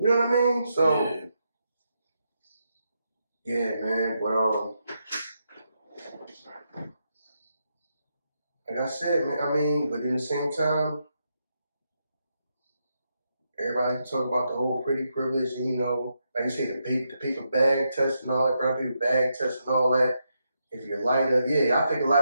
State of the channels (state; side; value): inverted; both; correlation -0.82